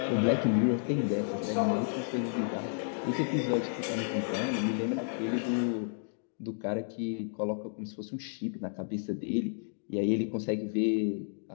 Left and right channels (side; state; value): right; silent; digital silence